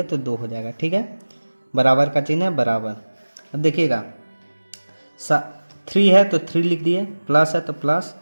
तो 2 हो जाएगा, ठीक है। बराबर का चिन्ह है, बराबर। अब देखिएगा 3 है तो 3 लिख दिए, प्लस है तो प्लस,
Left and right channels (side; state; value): both; inverted; correlation -1.00